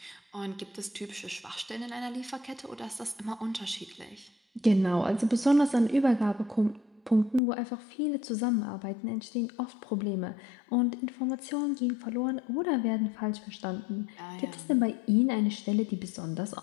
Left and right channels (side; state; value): right; drops out; at 7.4 s